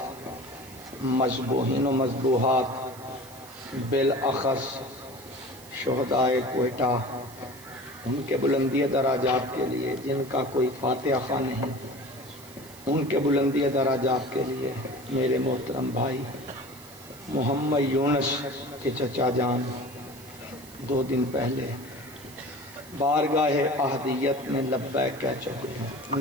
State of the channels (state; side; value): noise; right; hiss, 20 dB below the sound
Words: مذبوحین و مذبوحات، بالاخص شہدائے کوئٹہ، ان کے بلندی درجات کے لیے جن کا کوئی فاتحہ خواہ نہیں، ان کے بلندی درجات کے لیے میرے محترم بھائی محمد یونس کے چچا جان 2 دن پہلے بارگاہ احدیت میں لبیک کہہ چکے ہیں، ان